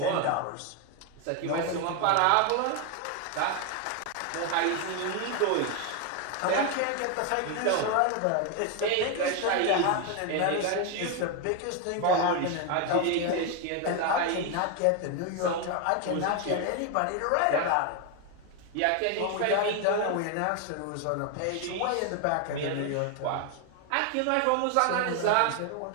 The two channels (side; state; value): both; different; correlation 0.01